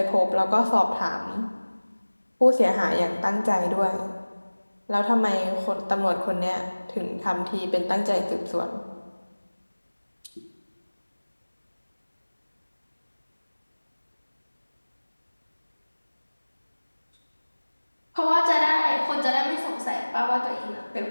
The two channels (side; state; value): both; inverted; correlation -1.00